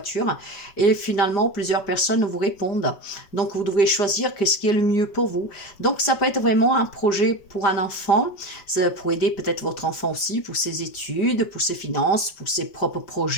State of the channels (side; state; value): right; late; 5.0 ms